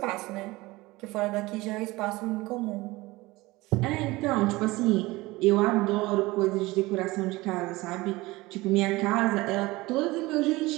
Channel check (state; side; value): quieter; left; 20.7 dB